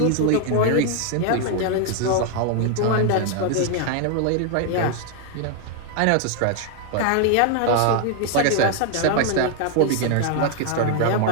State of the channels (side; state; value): both; different; correlation 0.00